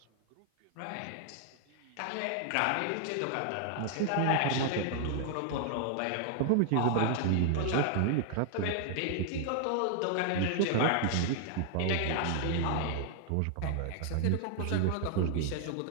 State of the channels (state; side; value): different; both; correlation 0.00